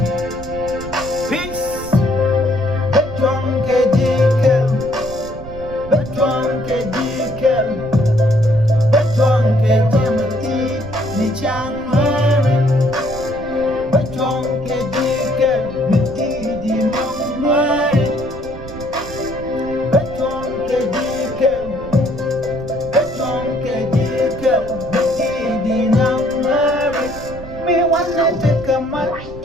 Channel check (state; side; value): noise; right; rumble, 13 dB below the sound